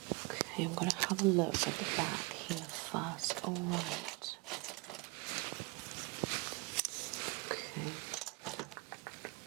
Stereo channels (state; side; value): quieter; left; 26.3 dB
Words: Okay, I'm going to have a look at the back here first. Alright. Okay.